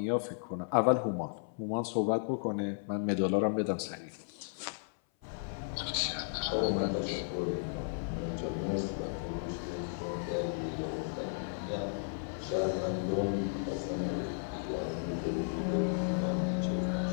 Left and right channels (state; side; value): silent; right; 55 dB below the other